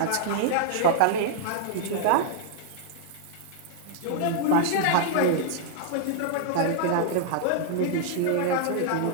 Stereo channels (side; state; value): both; different; correlation -0.01